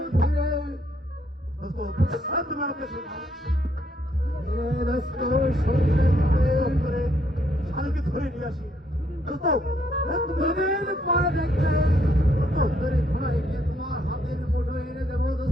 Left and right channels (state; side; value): normal; both; correlation 0.71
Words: ফিরে দোস্ত, তুমি আমাকে ছেড়ে দাও। করে শালকে ধরে নিয়ে আসি দোস্ত। দুদিন পরে দেখবে তোদের ঘোড়ায় গিয়ে তোমার হাতের মুঠো এনে দেবো